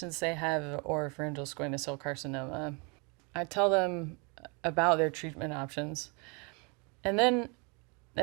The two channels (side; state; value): left; quieter; 31.8 dB